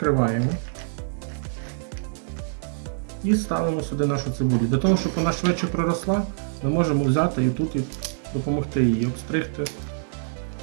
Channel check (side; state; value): left; silent; digital silence